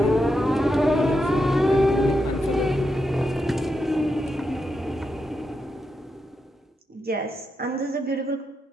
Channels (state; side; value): normal; both; correlation 0.85